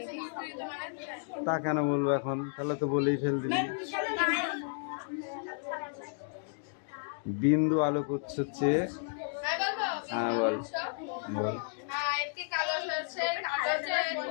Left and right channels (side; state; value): right; silent; digital silence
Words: তা কেন বলবো এখন? তাহলে তো বলেই ফেল দিবি। বিন্দু আলোকউৎস হচ্ছে, হ্যাঁ বল বল।